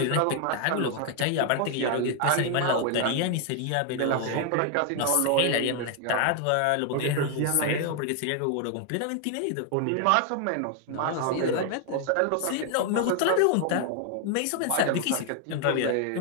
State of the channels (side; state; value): both; different; correlation 0.00